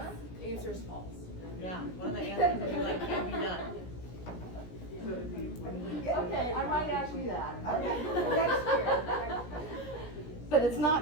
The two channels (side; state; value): right; late; 17 ms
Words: Answer's false. Yeah, one of the answers will be like, can't be done. So if you, Okay, I might ask you that. Okay, next year. But it's